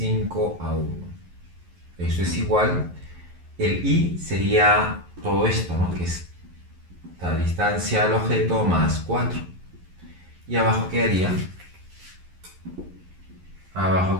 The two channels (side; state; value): left; late; 11 ms